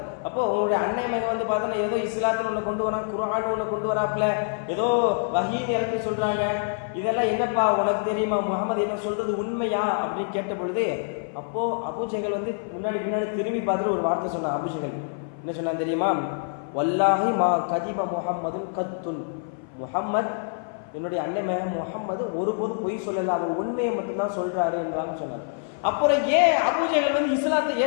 அப்போ உங்களுடைய அன்னை மகன் பார்த்தோன்னா ஏதோ இஸ்லாத்தில் ஒன்று கொண்டு வரான், குர்ஆன் ஒன்று கொண்டு வராப்புல, ஏதோ வஹீன்னு இறக்கி சொல்றாங்க, இதெல்லாம் என்னப்பா உனக்கு தெரியுமா, முகமது என்ன சொல்றது உண்மையா அப்படின்னு கேட்ட பொழுது, அப்போ அபூஜஹல் முன்னாடி திரும்பி பார்த்துட்டு ஒரு வார்த்தை சொன்னான். அபூஜஹல் என்ன சொன்னான் தெரியுமா? வல்லாஹி மா கதிப முஹம்மதுன் கத்துன், முஹம்மத் என்னுடைய அன்னை மகன் முஹம்மது ஒருபோதும் பொய் சொல்லல, அவர் உண்மையை மட்டும்தான் சொல்றாரு என்றாங்க சொன்னார். அப்புறம் ஏன் அபூஜஹல் இஸ்லாத்தை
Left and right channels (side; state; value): right; silent; 57 dB below the other